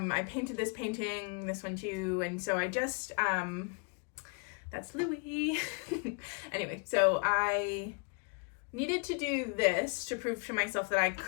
painted this painting, this one too. And so I just, that's Louis. Anyway, so I needed to do this to prove to myself that I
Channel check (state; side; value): quieter; right; 35.4 dB